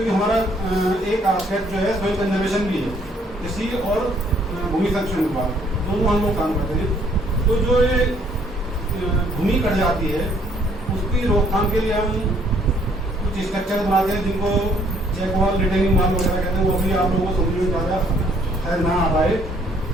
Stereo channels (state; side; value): normal; both; correlation 0.65